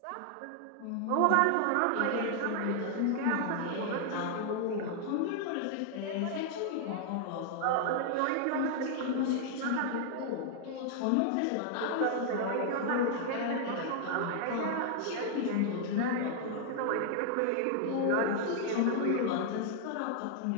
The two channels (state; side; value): different; both; correlation 0.00